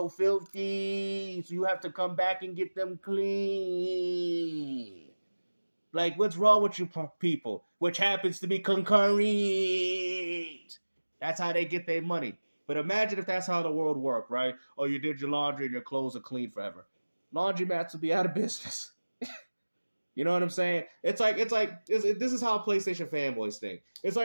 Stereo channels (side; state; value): both; inverted; correlation -1.00